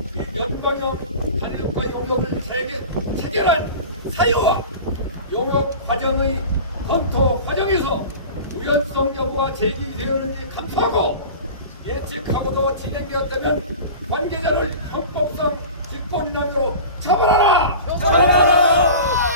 연방형 단일국가 용역을 체결한 사유와 용역 과정의 검토 과정에서 우연성 여부가 제기되었는지 감사하고 예측하고도 진행되었다면 관계자를 형법상 직권남용으로 처벌하라!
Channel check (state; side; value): inverted; both; correlation -0.36